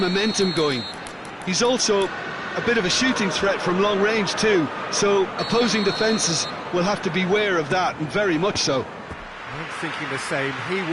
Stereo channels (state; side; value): identical; both; correlation 1.00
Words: going. He's also a bit of a shooting threat from long range too, so opposing defences will have to beware of that, and very much so. I'm thinking the same. He